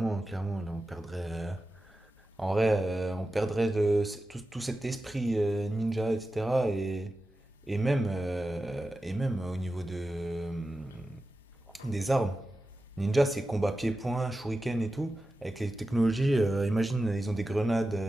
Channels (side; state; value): both; normal; correlation 0.93